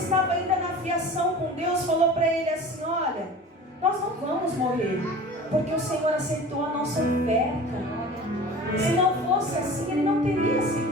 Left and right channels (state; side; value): normal; both; correlation 0.39